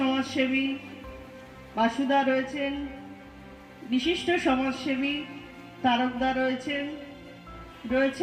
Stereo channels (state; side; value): identical; both; correlation 1.00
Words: বাসুদা রয়েছেন, বিশিষ্ট সমাজসেবী তারকদা